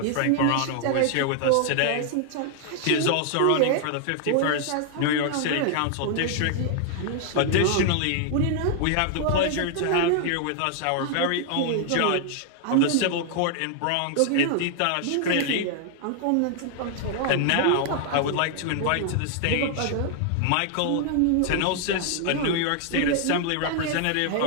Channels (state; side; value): different; both; correlation 0.00